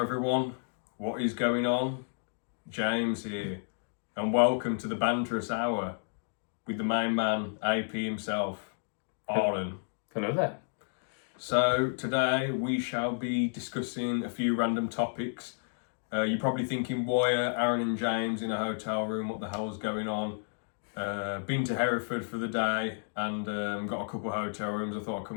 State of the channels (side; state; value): right; silent; digital silence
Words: What is going on? James here, and welcome to the Banterous Hour with the main man, AP himself, Arlen. Hello there. So today we shall be discussing a few random topics. You're probably thinking, why are Aaron and James in a hotel room? What the hell is going on? Been to Hereford for the day and got a couple of hotel rooms. I thought I'd come